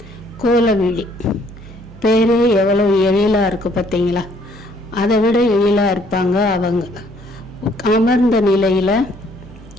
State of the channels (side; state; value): both; normal; correlation 0.63